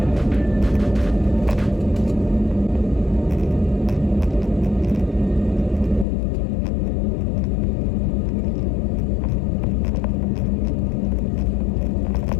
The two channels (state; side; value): drops out; right; at 6.1 s